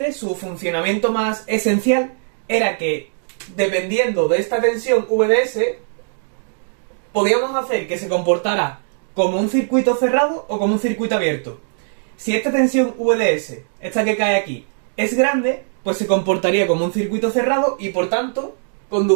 su funcionamiento más esencial era que, dependiendo de esta tensión VDS, podíamos hacer que se comportara como un circuito cerrado o como un circuito abierto. Si esta tensión VDS, esta que cae aquí, es grande, pues se comportaría como un circuito cerrado y por tanto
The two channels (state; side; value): silent; left; digital silence